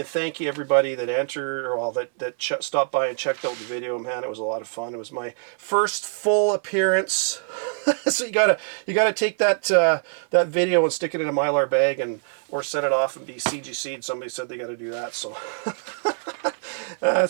thank you everybody that entered, or all that stopped by and checked out the video. Man, it was a lot of fun. It was my first full appearance. So you gotta take that video and stick it in a Mylar bag or set it off and be CGC'd. Somebody said they got to do that, so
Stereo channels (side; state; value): left; silent; 60 dB below the other